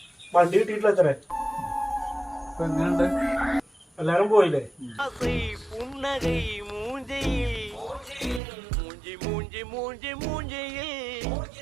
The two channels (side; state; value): left; drops out; at 8.4 s